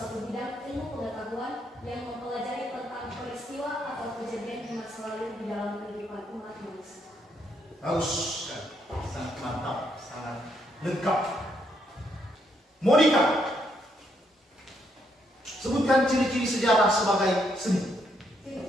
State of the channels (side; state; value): both; normal; correlation 0.75